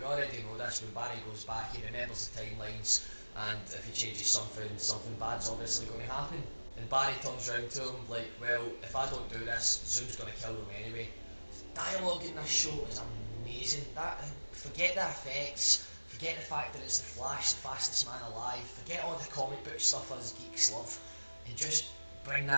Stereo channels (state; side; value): inverted; both; correlation -1.00